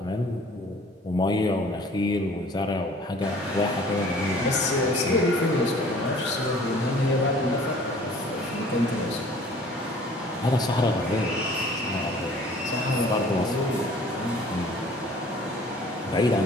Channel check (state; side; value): normal; both; correlation 0.51